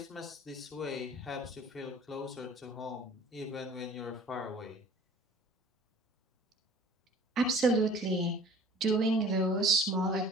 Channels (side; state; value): both; normal; correlation 0.48